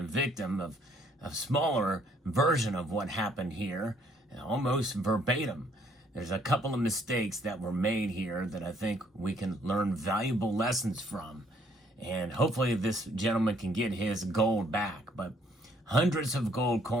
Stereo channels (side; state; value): both; normal; correlation 0.65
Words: victim of a smaller version of what happened here, almost verbatim. There's a couple of mistakes that were made here that I think we can learn valuable lessons from. And hopefully this gentleman can get his gold back. But hundreds of gold